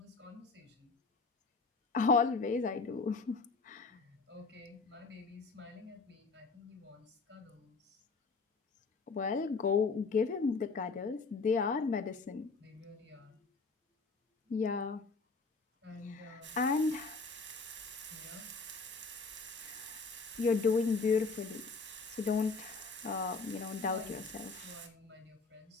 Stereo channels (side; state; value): right; quieter; 4.2 dB